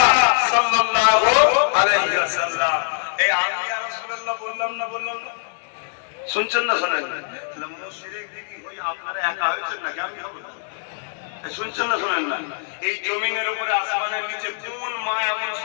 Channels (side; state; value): right; silent; digital silence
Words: সাল্লাল্লাহু আলাইহি ওয়াসাল্লাম। এই আমি ইয়া রাসূলুল্লাহ বললাম না, বললাম না? শুনছেন না শোনেন? তাহলে মুশরিক দেখি ওই আপনারা একা হয়েছেন নাকি? আমি বলবো শুনছেন না শোনেন না? এই জমিনের উপরে আসমানের নিচে কোন মা এমন